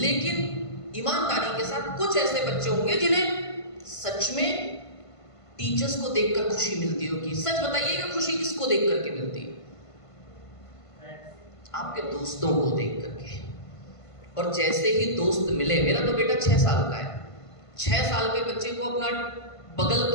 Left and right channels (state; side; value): late; right; 1.5 ms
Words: ईमानदारी के साथ कुछ ऐसे बच्चे होंगे जिन्हें सच में टीचर्स को देखकर खुशी मिलती होगी। सच बताइएगा, खुशी किसको देख करके मिलती है? आपके दोस्तों को देख करके। और जैसे ही दोस्त मिले, मेरा तो बेटा 6 साल का है, 6 साल के बच्चे को अपना बगल